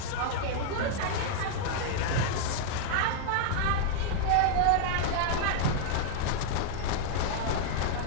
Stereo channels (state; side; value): different; both; correlation -0.01